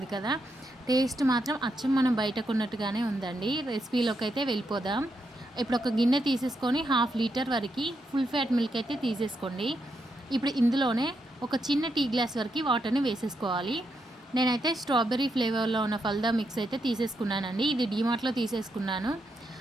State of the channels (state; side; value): normal; both; correlation 0.82